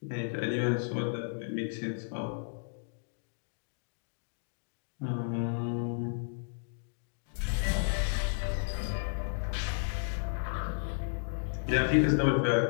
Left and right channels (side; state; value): right; silent; digital silence